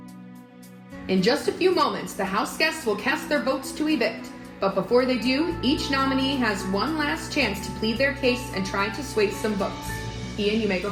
In just a few moments, the house guests will cast their votes to evict. But before they do, each nominee has one last chance to plead their case and try to sway some votes. Ian, you may go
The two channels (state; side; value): identical; both; correlation 1.00